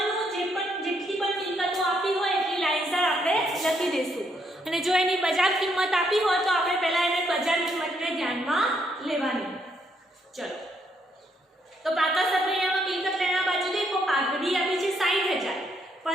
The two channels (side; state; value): both; normal; correlation 0.73